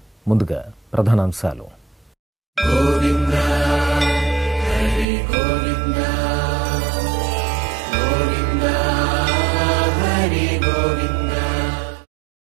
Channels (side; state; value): left; drops out; at 5.1 s